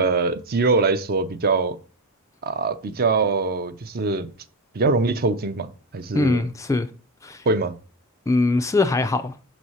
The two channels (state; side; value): normal; both; correlation 0.18